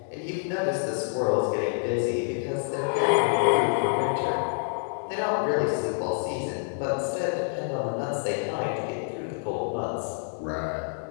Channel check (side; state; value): right; silent; digital silence